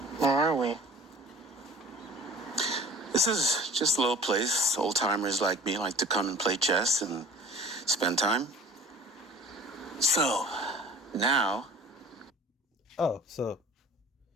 Where are we? This is just a little place. Old timers like me like to come and play chess and spend time. So, now... Oh, so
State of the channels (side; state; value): both; normal; correlation 0.46